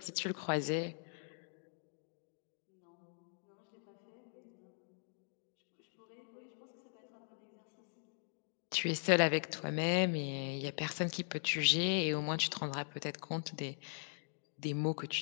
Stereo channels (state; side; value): silent; right; digital silence